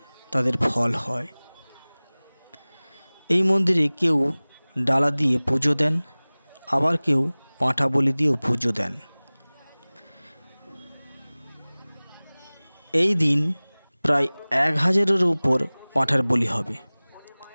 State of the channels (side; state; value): both; inverted; correlation -1.00